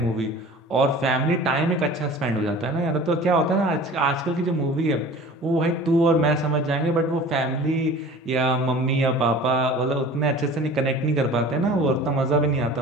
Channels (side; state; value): both; normal; correlation 0.42